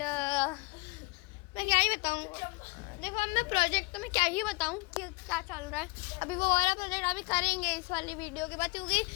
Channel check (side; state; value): right; quieter; 28.6 dB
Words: मैं क्या ही बताऊँ, देखो अब मैं प्रोजेक्ट तो मैं क्या ही बताऊँ कि क्या चल रहा है। अभी वो वाला प्रोजेक्ट अभी करेंगे इस वाली वीडियो के बाद क्योंकि